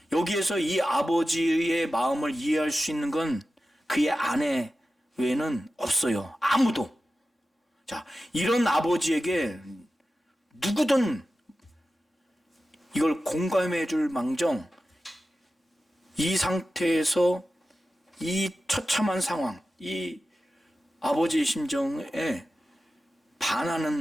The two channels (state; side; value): normal; both; correlation 0.94